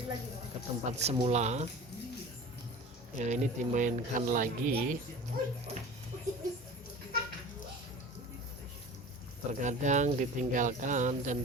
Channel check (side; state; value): both; normal; correlation 0.38